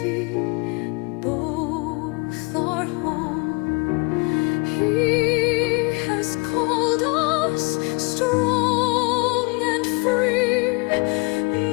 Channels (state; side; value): quieter; right; 28.9 dB